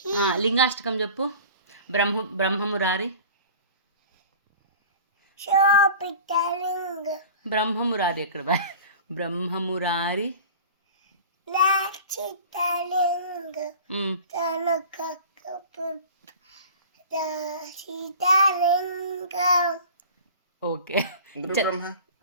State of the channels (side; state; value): both; inverted; correlation -0.40